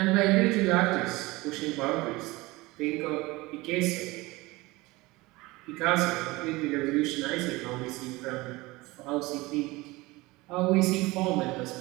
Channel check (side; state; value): left; quieter; 21.6 dB